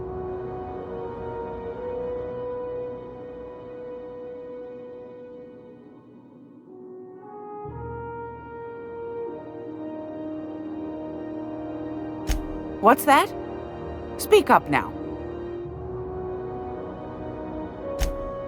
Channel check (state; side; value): identical; both; correlation 1.00